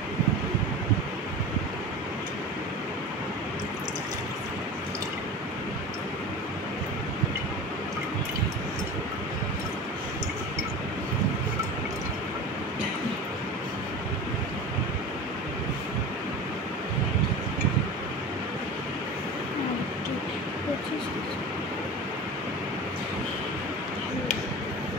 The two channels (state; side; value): normal; both; correlation 0.33